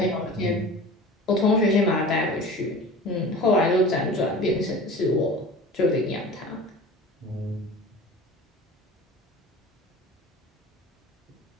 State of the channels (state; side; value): normal; both; correlation 0.38